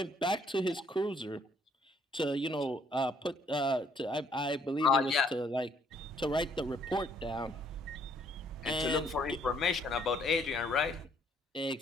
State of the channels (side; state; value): both; normal; correlation 0.66